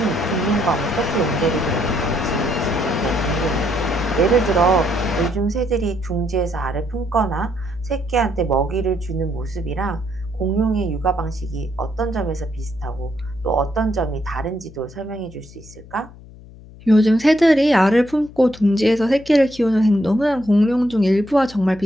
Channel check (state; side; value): noise; left; hum, 20 dB below the sound